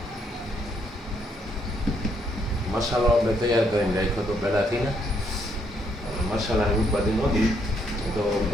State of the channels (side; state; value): both; normal; correlation 0.72